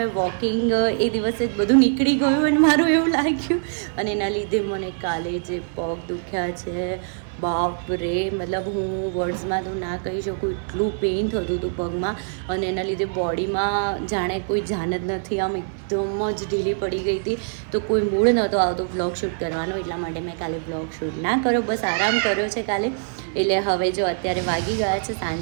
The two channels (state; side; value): silent; left; 56 dB below the other